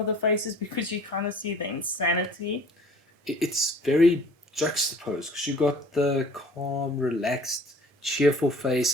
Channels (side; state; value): both; normal; correlation 0.50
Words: the faces because you kind of see the insanity. It's very juxtaposed because you got the calm, relaxed, cheerful